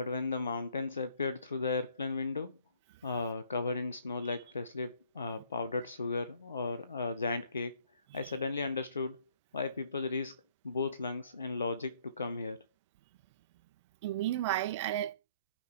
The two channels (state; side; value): inverted; both; correlation -0.63